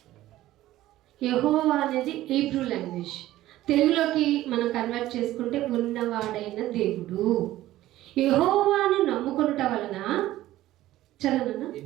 యెహోవా అనేది హీబ్రూ లాంగ్వేజ్. తెలుగులోకి మనం కన్వర్ట్ చేసుకుంటే ఉన్నవాడైన దేవుడు. యెహోవాను నమ్ముకొనుట వలన, చదవనా,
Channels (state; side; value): quieter; left; 15.1 dB